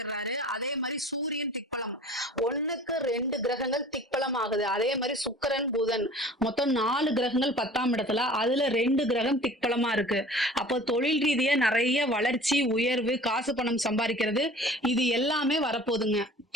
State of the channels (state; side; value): normal; both; correlation 0.45